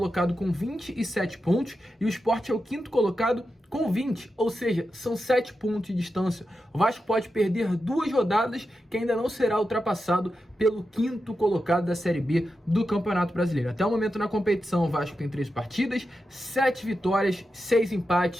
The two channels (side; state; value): both; normal; correlation 0.89